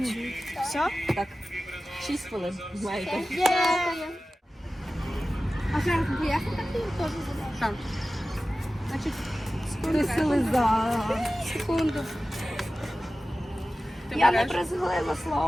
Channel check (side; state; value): both; normal; correlation 0.95